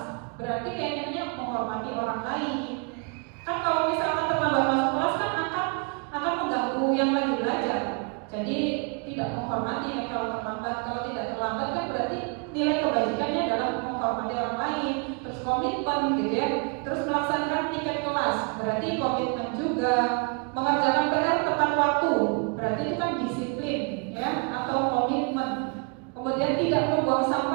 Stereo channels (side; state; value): left; quieter; 35.6 dB